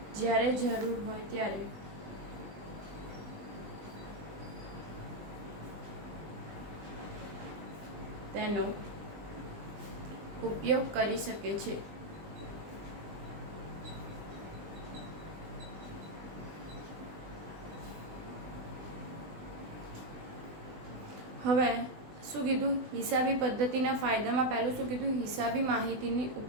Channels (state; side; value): late; left; 20 ms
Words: જ્યારે જરૂર હોય ત્યારે તેનો ઉપયોગ કરી શકે છે. હવે શું કીધું? હિસાબી પદ્ધતિના ફાયદામાં પહેલું શું કીધું? હિસાબી માહિતીની